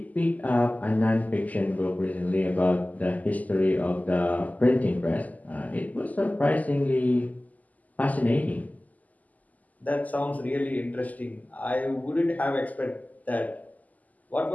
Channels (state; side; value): late; right; 0.078 ms